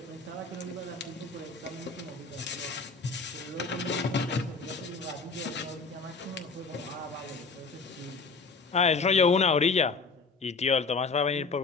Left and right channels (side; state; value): right; quieter; 4.2 dB